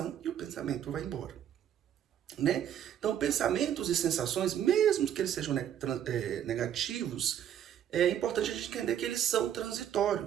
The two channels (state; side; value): quieter; left; 10.0 dB